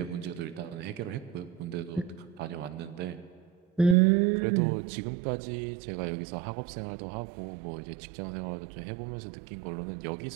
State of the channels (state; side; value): drops out; left; at 4.0 s